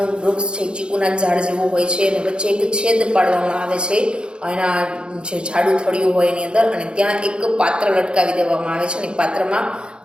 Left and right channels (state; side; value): late; left; 0.052 ms